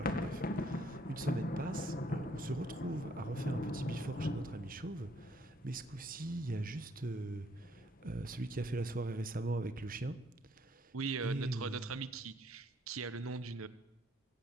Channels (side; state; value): both; normal; correlation 0.66